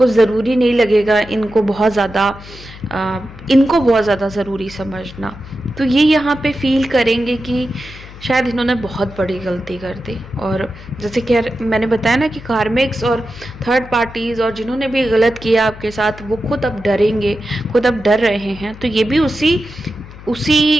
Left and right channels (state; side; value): noise; left; hum, 17 dB below the sound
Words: ज़रूरी नहीं लगेगा इनको बहुत ज़्यादा ज़रूरी समझना। तो ये यहाँ पे फील करेंगे कि शायद इन्होंने बहुत बड़ी गलती कर दी। और जैसे कि मैंने बताया ना कि कार्मिक्स और थर्ड पार्टीज़ और जिन्होंने भी गलत किया आपके साथ, वो खुद अब डरेंगे, खुद अब डर रहे हैं। तो ये भी उसी